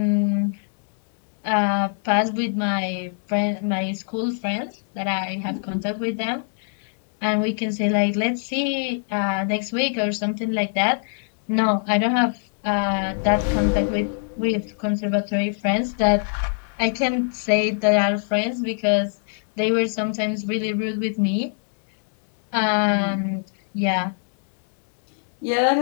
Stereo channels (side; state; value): right; silent; digital silence